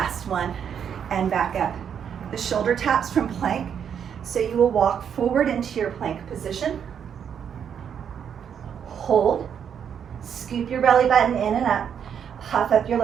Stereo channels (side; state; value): left; quieter; 8.1 dB